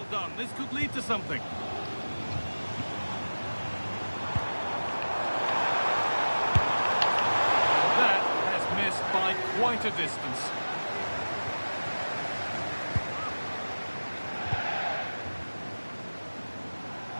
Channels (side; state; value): both; inverted; correlation -1.00